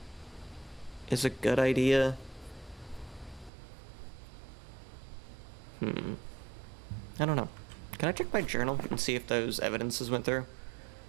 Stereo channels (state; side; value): drops out; left; at 3.5 s